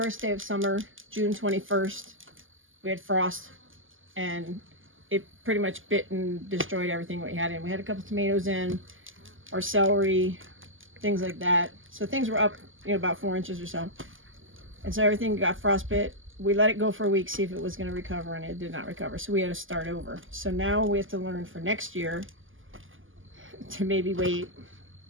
day of summer, June 21st, we had frost and it pretty much bit and destroyed everything we had in. We had a couple tomatoes in, our celery, things like that. So things were up, about 4 inches or so. And so everything got frostbit. We let it go for a week, see if it was going to recover, and it did not recover. So we had to start over. So now we have to learn for next year to maybe wait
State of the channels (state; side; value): late; left; 0.58 ms